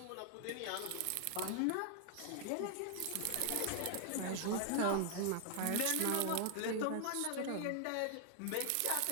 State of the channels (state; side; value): different; both; correlation 0.00